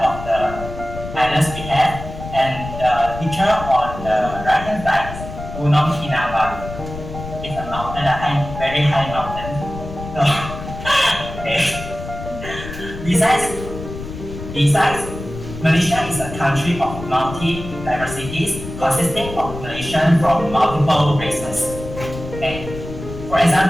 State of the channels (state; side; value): noise; left; rumble, 10 dB below the sound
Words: the islands we have, and the picture on the right-hand side is Gunung Kinabalu. It's a mountain, a very high mountain. So, okay. Besides, Malaysia is a country of multi-diversities consisting of Malaysians from multiple races. Okay. For